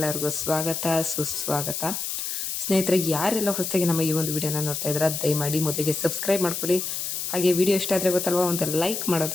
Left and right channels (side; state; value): left; noise; hiss, 3 dB below the sound